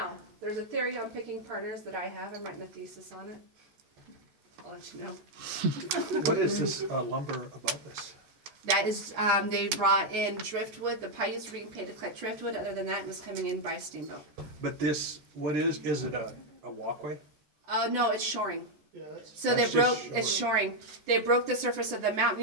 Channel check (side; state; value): left; late; 14 ms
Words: there's a theory on picking partners that I have. I'm writing a thesis on it. I'll let you know. What is this lumber above this? That is, they brought in driftwood. The Paiutes were being paid to collect driftwood. Other than that, it was coming in by steamboat. But this, what is it a walkway? No, it's shoring. Yeah, that's. So they That's broke, just it's shoring. They broke the surface of the mountain.